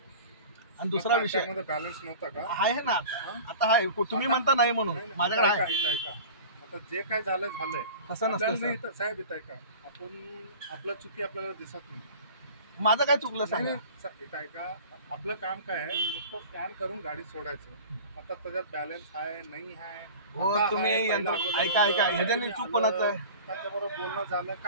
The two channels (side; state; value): both; inverted; correlation -0.39